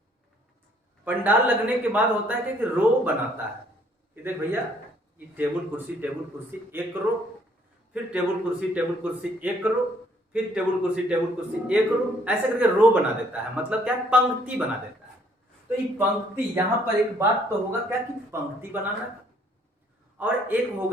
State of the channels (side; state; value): both; normal; correlation 0.64